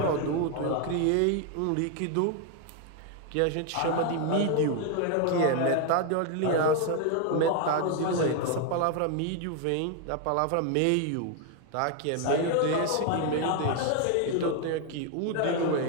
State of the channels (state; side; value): different; both; correlation 0.01